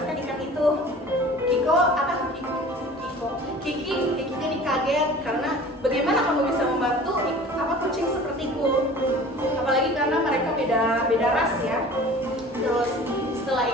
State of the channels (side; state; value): both; normal; correlation 0.43